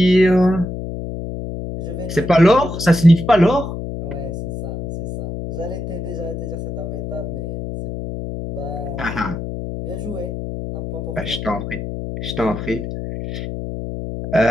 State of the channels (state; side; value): noise; left; hum, 6 dB below the sound